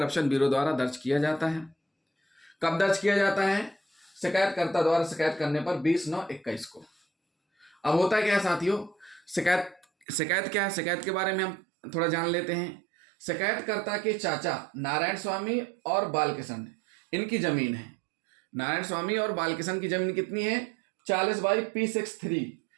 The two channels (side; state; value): left; drops out; at 10.1 s